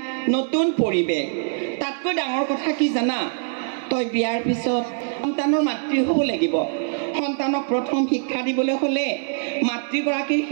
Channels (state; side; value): silent; left; 57 dB below the other